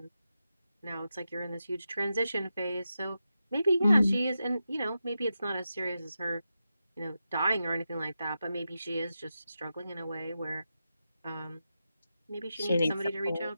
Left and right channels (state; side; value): inverted; both; correlation -0.89